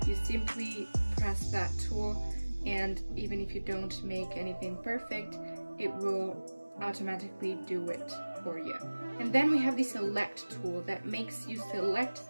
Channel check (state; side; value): inverted; both; correlation -1.00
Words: you simply press that tool, and even if you don't make anything perfect, it will automatically do it for you. And then we have the select tool that makes you select